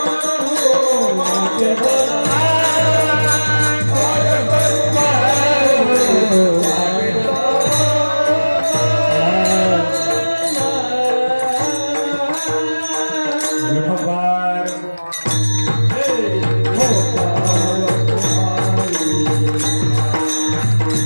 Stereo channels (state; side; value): inverted; both; correlation -1.00